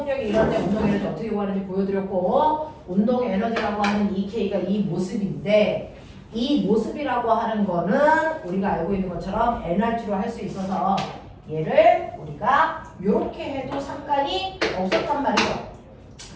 이럴 때 운동 에너지 어떻게 구하는지 보여드렸고, 운동 에너지라고 하는 EK가 이 모습인데, 이 모습이라고 하는 거는 우리가 알고 있는 것처럼 NRT로 할 수 있어서 얘를 우리가 이렇게 해도 상관이 없었단 말이죠.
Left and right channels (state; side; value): identical; both; correlation 1.00